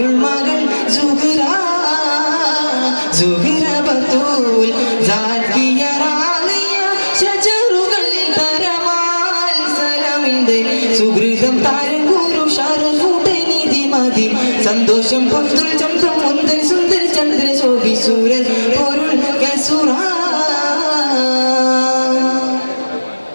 മകൾ സുഹ്റ സുഹ്റ ബത്തൂൽ സാക്കിയ റാളിയ ശജറുകൾ തരമാൽ സലമിന്റെ സുഹൃതം താരം ഗുരു ഷറഫുടൈനിധി മതി സന്തോഷം പൊന്തുൽ ചന്തം മുന്തൻ സുന്ദര ചന്ദ്ര ശോഭി സൂരൻ പൊരുൾ കസുറ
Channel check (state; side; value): inverted; both; correlation -1.00